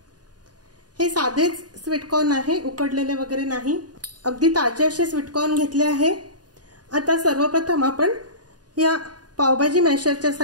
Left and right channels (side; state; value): left; late; 0.69 ms